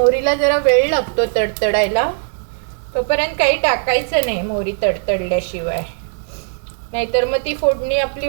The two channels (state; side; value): silent; left; 67 dB below the other